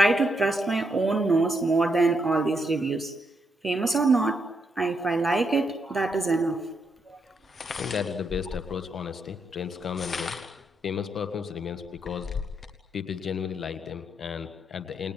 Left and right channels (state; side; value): normal; both; correlation 0.79